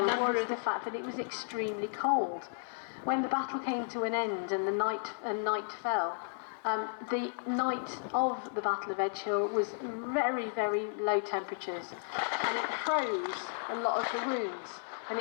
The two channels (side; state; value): right; silent; digital silence